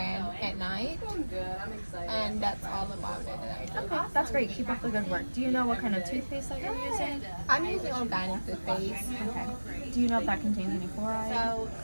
at night, and that's all about it that I do. Okay, that's great. Keep up the good work. Do you know what kind of toothpaste that you're using? I'm using organic toothpaste. Okay. Do you know if that contains any fluoride? So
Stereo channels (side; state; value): both; inverted; correlation -1.00